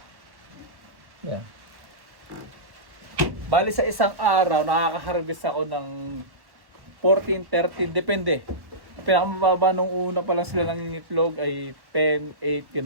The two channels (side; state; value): left; late; 1.1 ms